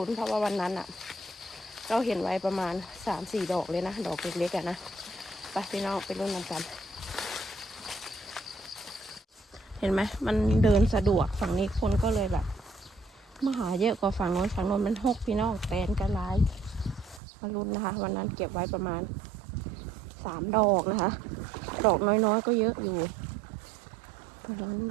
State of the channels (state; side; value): drops out; left; at 17.2 s